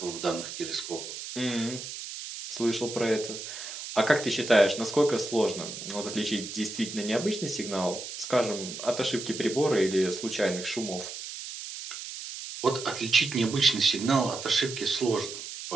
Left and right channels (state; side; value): noise; right; hiss, 9 dB below the sound